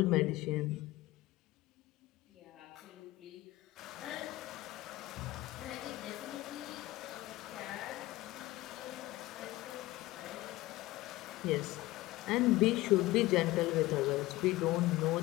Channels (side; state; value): right; quieter; 18.4 dB